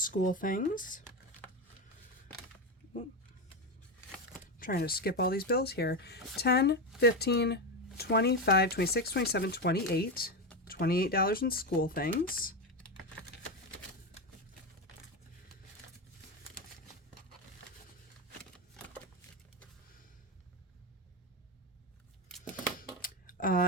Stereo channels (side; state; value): both; normal; correlation 0.13